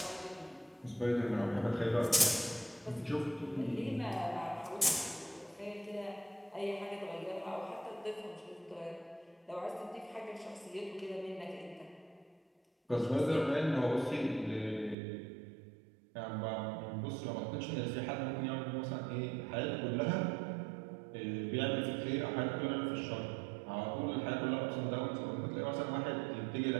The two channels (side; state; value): left; drops out; at 15.0 s